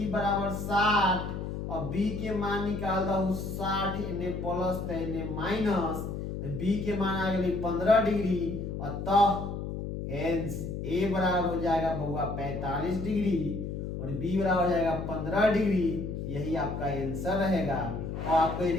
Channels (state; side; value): noise; left; hum, 5 dB below the sound